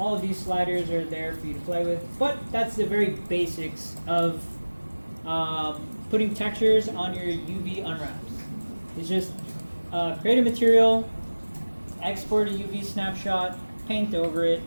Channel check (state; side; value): inverted; both; correlation -1.00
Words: of these sliders are there for you to play with, but that's the very basics of putting textures on your UV unwraps. It's just create a material, export a UV snapshot, paint over it,